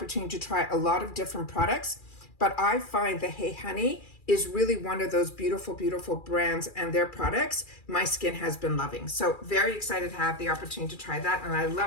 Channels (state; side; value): late; right; 2.4 ms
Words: to try a lot of different products, but I find the Hey Honey is really one of those beautiful, beautiful brands, and their products my skin has been loving. So very excited to have the opportunity to try that, and I